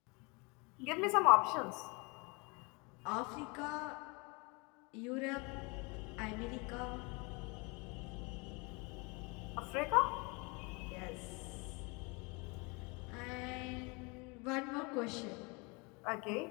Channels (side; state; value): right; quieter; 29.4 dB